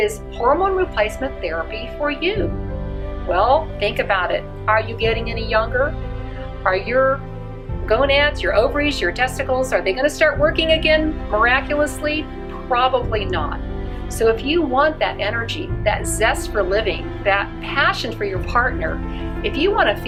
hormone replacement therapy for you? Well, think about it. Are you getting any younger? Are your gonads, your ovaries, your testicles, are they going to start working again miraculously? Probably not. So if you want that energy, that zest for living, that passion for your partner, if you want to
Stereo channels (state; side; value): identical; both; correlation 1.00